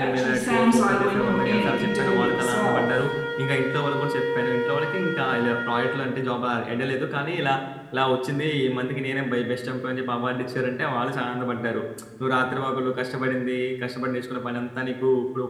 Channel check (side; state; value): both; identical; correlation 1.00